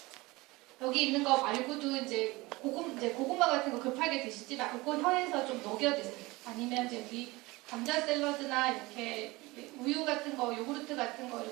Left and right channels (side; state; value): left; quieter; 21.9 dB